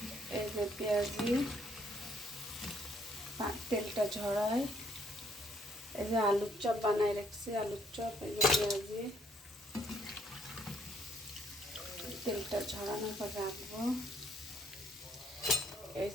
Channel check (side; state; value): both; normal; correlation 0.67